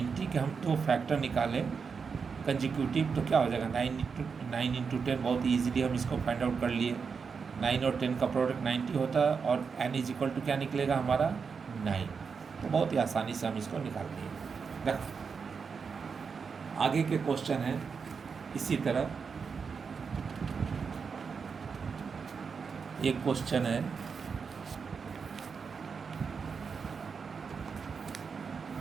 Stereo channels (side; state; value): left; quieter; 5.6 dB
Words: के हम तो फैक्टर निकालें कंजिक्यूटिव, तो क्या हो जाएगा 9 इंटू 10, बहुत ईजिली हम इसको फाइंड आउट कर लिए। 9 और 10 का प्रोडक्ट 90 होता है और एन इज इक्वल टू क्या निकलेगा हमारा 9। तो बहुत ही आसानी से हम इसको निकाल लिए। देखो आगे के क्वेश्चन हैं इसी तरह। एक क्वेश्चन है